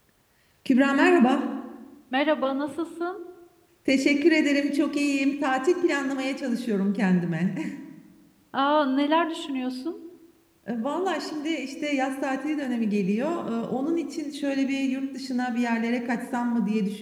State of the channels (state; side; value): identical; both; correlation 1.00